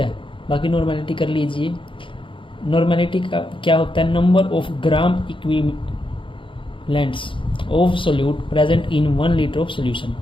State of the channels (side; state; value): right; late; 0.25 ms